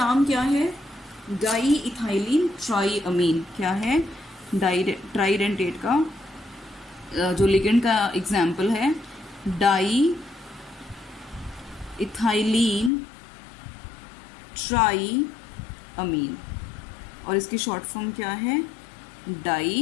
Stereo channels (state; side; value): drops out; right; at 12.9 s